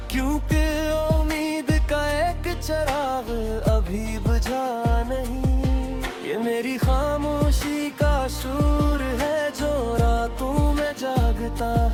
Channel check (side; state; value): both; identical; correlation 1.00